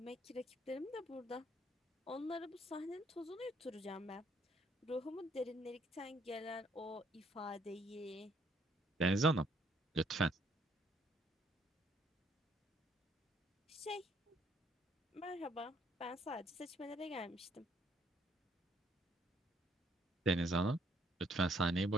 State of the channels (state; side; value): normal; both; correlation 0.67